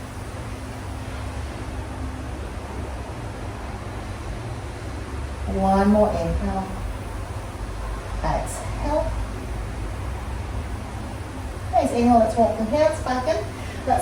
One more inhale. Exhale. Nice. Inhale, let's walk the hands back in.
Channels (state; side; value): identical; both; correlation 1.00